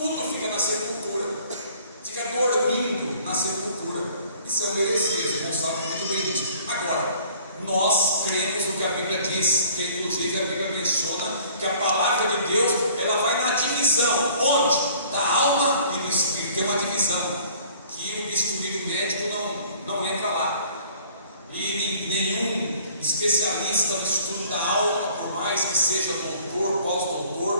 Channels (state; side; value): inverted; both; correlation -0.53